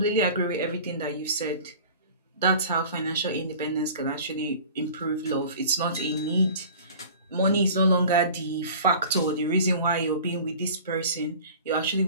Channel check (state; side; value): inverted; both; correlation -0.42